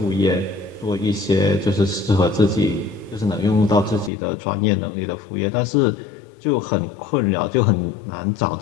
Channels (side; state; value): right; drops out; at 4.1 s